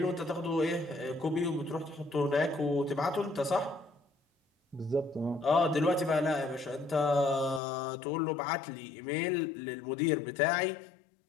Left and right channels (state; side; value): drops out; right; at 7.6 s